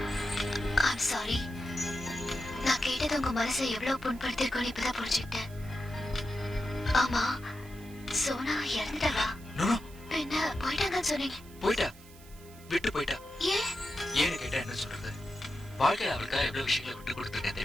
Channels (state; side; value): noise; right; hiss, 22 dB below the sound